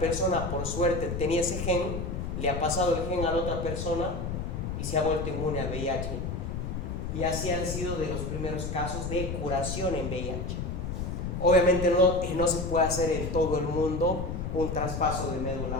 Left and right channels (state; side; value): noise; left; rumble, 4 dB below the sound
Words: por suerte tenía ese gen, le ha pasado el gen a la otra persona y se ha vuelto inmune al VIH, y así han sido de los primeros casos de curación en VIH. Obviamente no se puede hacer en todo el mundo un traspaso de